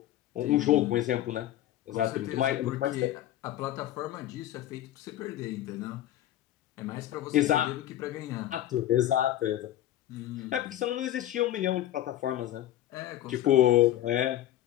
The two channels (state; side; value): quieter; right; 13.1 dB